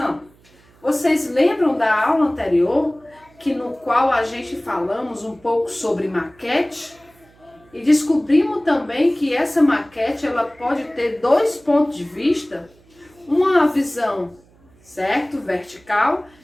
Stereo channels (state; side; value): noise; right; hum, 30 dB below the sound